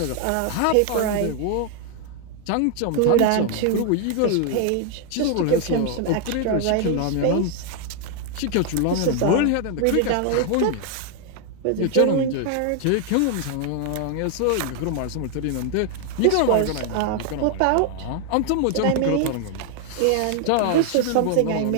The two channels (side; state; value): both; different; correlation 0.00